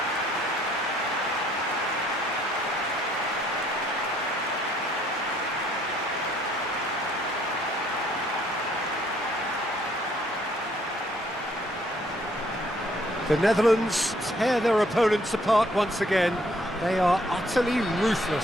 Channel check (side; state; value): both; normal; correlation 0.65